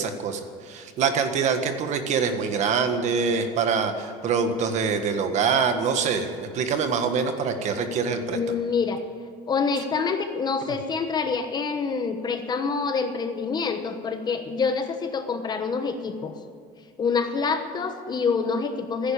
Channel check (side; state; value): both; normal; correlation 0.31